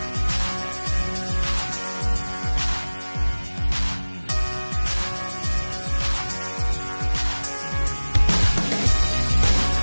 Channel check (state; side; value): inverted; both; correlation -1.00